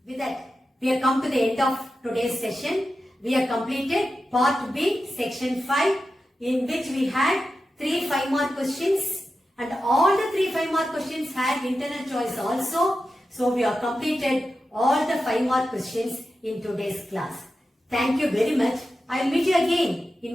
With that, we have come to the end of today's session. We have completed part B, section 5, in which we had 3 5-mark questions, and all the 3 5-mark questions had internal choice also. So we have completed all the 5-mark questions in today's class. Thank you very much. I will meet you again in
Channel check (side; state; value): both; normal; correlation 0.91